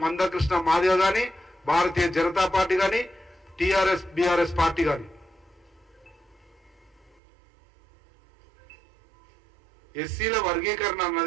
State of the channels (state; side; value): drops out; left; at 7.2 s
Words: మందకృష్ణ మాదిగ కానీ, భారతీయ జనతా పార్టీ కానీ, టిఆర్ఎస్ బిఆర్ఎస్ పార్టీ కానీ. ఎస్సీల వర్గీకరణ